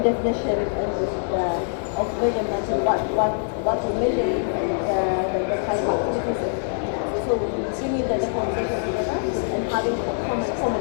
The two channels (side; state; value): right; silent; 63 dB below the other